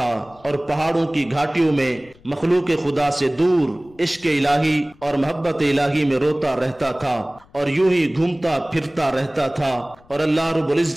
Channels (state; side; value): noise; left; rumble, 28 dB below the sound